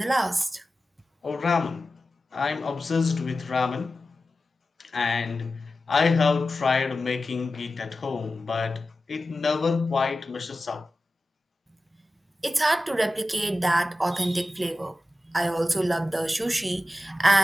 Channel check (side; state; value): both; normal; correlation 0.94